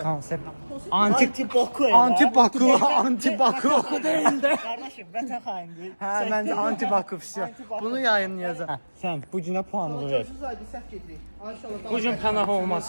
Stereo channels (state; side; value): inverted; both; correlation -1.00